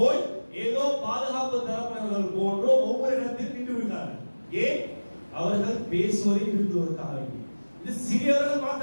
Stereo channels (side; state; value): both; inverted; correlation -1.00